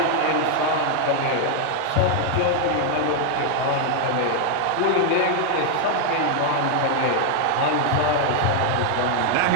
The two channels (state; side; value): different; both; correlation 0.00